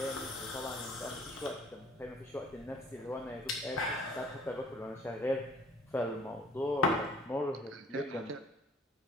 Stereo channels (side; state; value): both; normal; correlation 0.54